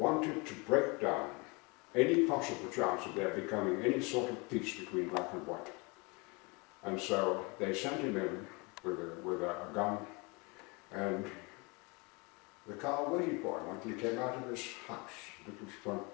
to break down any possible chance of there becoming any sort of peace between black and white. And so they sent him in with a gun, and the car waited for him until he came out of his house, little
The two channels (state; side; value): quieter; right; 28.6 dB